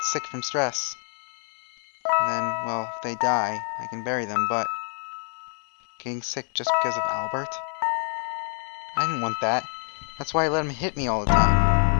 sick from stress. And then, well, if they die, I can bury them, but... Getting sick just because of Albert? I didn't want that. That's why I let him hit me all the time.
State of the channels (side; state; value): right; silent; 59 dB below the other